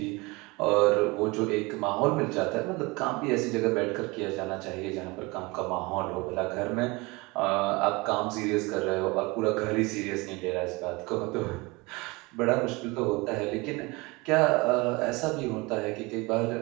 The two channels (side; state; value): left; quieter; 24.7 dB